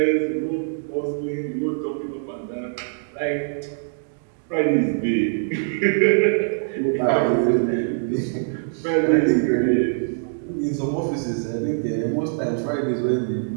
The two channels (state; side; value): silent; left; digital silence